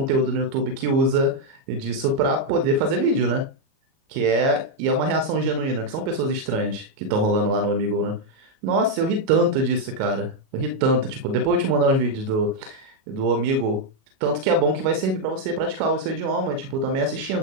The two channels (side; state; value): left; late; 37 ms